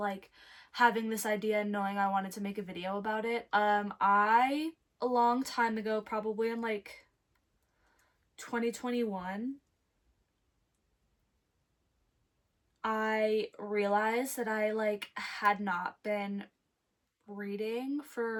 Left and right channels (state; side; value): identical; both; correlation 1.00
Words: having this idea and knowing I wanted to make a video about it. I a long time ago, probably in like 2021, I realized that I like had not been reading